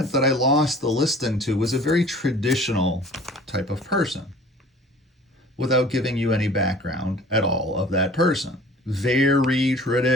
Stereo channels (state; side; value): normal; both; correlation 0.48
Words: that I lost the listing to was a very traditional type of person without giving you any background at all of that person. Very